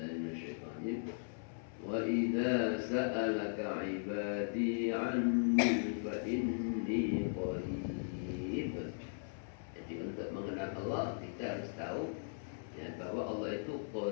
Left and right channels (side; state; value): right; silent; 52 dB below the other